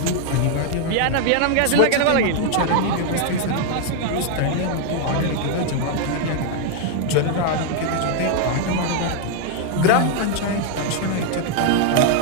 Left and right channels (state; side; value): different; both; correlation 0.00